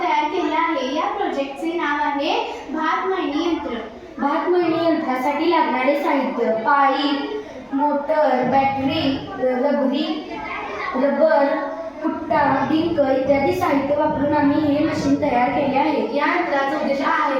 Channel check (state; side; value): identical; both; correlation 1.00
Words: तयार केला आहे. या प्रोजेक्टचे नाव आहे भात मळणी यंत्र. भात मळणी यंत्रासाठी लागणारे साहित्य पाईप, मोटर, बॅटरी, रबर, कुट्टा, डिंक इत्यादी साहित्य वापरून आम्ही हे मशीन तयार केले आहे. या यंत्राचा उद्देश आहे